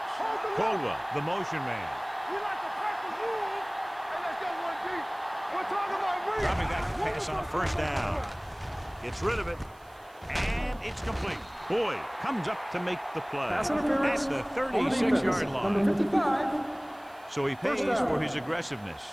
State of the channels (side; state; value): right; noise; hiss, 29 dB below the sound